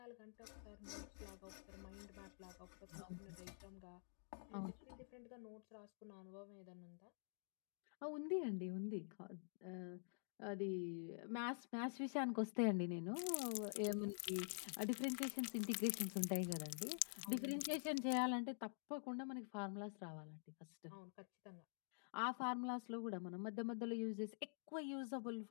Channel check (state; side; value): silent; right; digital silence